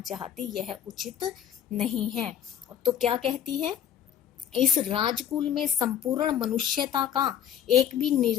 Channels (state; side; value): quieter; right; 9.7 dB